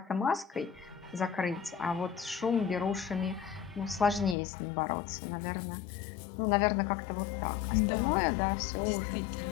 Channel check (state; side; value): drops out; right; at 4.4 s